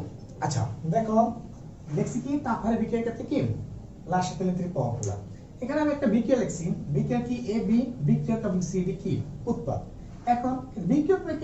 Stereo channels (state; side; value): identical; both; correlation 1.00